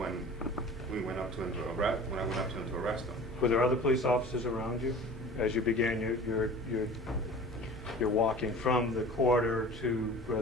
we went up to him to arrest. When I went up to him to arrest him. Were there other police officers around you as you began your walking from the quarter to where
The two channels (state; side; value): normal; both; correlation 0.40